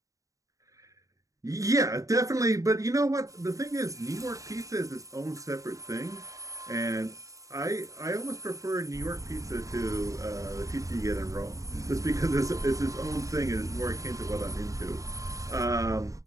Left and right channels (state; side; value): late; left; 0.16 ms